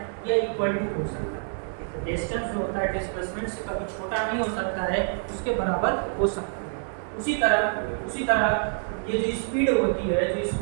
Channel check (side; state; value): left; silent; 59 dB below the other